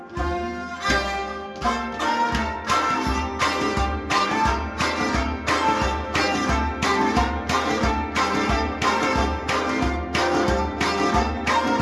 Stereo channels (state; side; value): identical; both; correlation 1.00